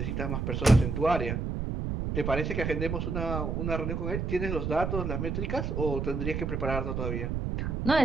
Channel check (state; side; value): noise; right; rumble, 2 dB below the sound